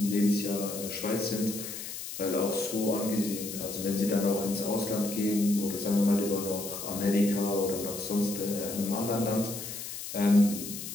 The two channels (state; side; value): noise; left; hiss, 8 dB below the sound